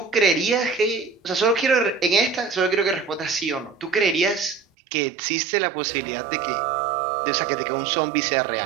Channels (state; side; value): drops out; left; at 4.7 s